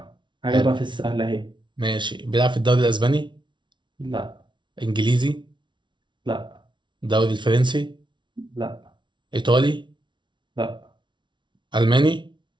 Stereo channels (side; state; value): left; late; 0.23 ms